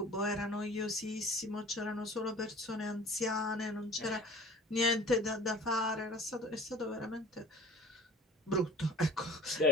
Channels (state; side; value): normal; both; correlation 0.44